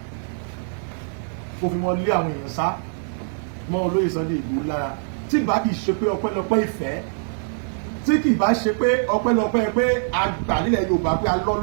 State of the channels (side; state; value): left; silent; digital silence